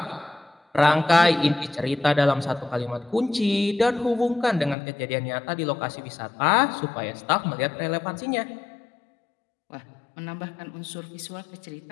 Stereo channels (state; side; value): drops out; right; at 4.8 s